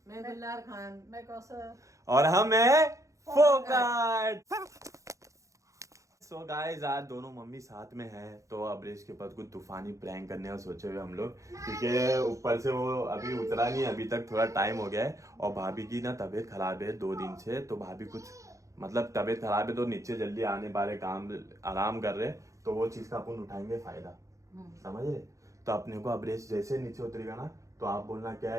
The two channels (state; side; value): late; left; 0.15 ms